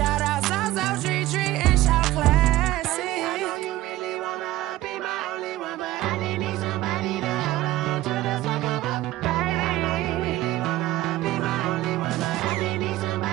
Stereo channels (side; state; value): left; quieter; 16.4 dB